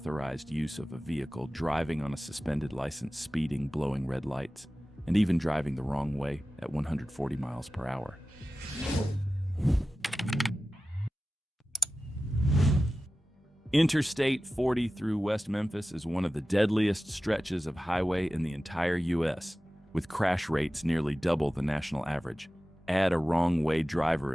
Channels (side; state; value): both; normal; correlation 0.95